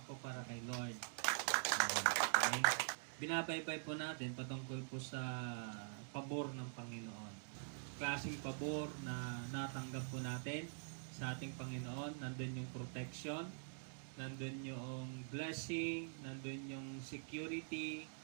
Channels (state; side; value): silent; left; digital silence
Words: po para kay Lord. Okay. Binabaybay po natin patungkol po sa pabor ng Panginoon. Klaseng pabor na natanggap po natin sa ating Panginoon. Nandun yung protection, nandun yung blessing, nandun yung security.